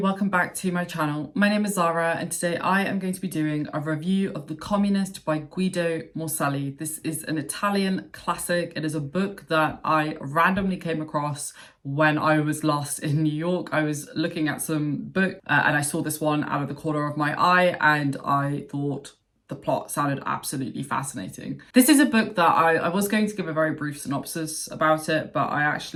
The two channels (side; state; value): both; identical; correlation 1.00